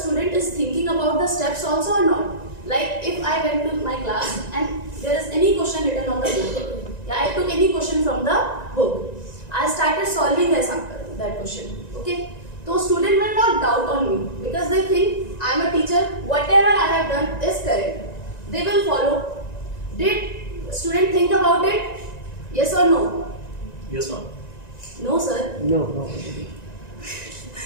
is thinking about the steps also or not. Like if I went to my class and there is any question written on the book, yeah, I took any question from the book, I started solving that question. Okay, so student will not doubt on me because they think I am a teacher. Whatever I have done is correct. They will follow. Did student think about it? Yes or no? Yes, ma'am. No, sir. No.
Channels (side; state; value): right; late; 1.9 ms